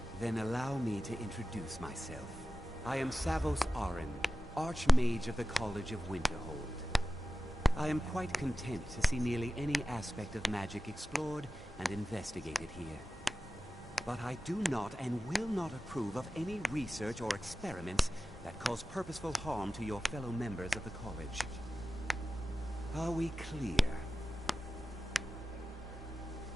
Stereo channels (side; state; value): both; normal; correlation 0.94